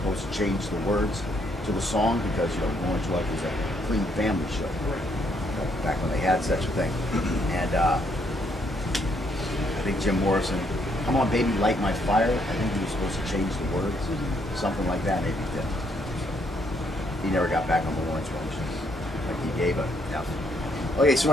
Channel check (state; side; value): normal; both; correlation 0.72